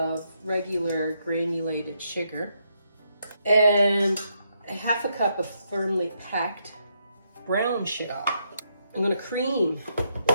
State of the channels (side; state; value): both; inverted; correlation -0.78